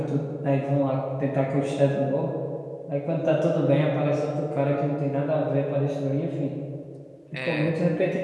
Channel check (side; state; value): both; identical; correlation 1.00